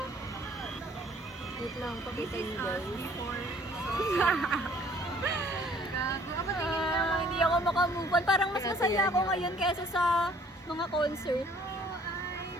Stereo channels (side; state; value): both; normal; correlation 0.57